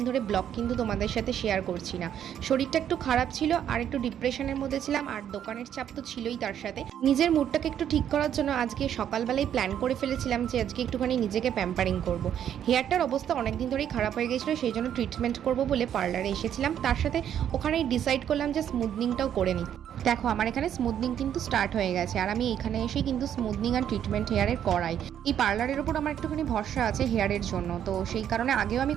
ধরে ব্লগ কিন্তু তোমাদের সাথে শেয়ার করছি না। শরীরটা একটু খারাপ ছিল আর একটু ডিপ্রেশনের মধ্যে ছিলাম, আর দোকানের চাপ তো ছিলই, তার সাথে নিজের মুডটাকে একটু ঠিক করার জন্য আজকে সকালবেলায় প্ল্যান করে ফেলেছিলাম যে আজকে একটুখানি নিজেকে প্যাম্পারিং করব। হেয়ারটার অবস্থা অনেক দিন ধরেই খারাপ হয়ে গেছিলো, সেই জন্য ট্রিটমেন্ট করব বলে পার্লারে এসেছিলাম। তার সাথে ওখানেই ডিসাইড করলাম যে স্মুথনিংটাও করে নিই। দেখো আমার এখানে স্মুথনিং কিন্তু স্টার্ট হয়ে গেছে, আর আমি এখানে এসেই কিন্তু স্মুথনিং আর ট্রিটমেন্ট হেয়ারের করাই। এই পার্লারের ওপর আমার একটুখানি ভরসা আছে হেয়ারের জন্য, তো সেই কারণে আগেও আমি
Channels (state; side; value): quieter; left; 9.8 dB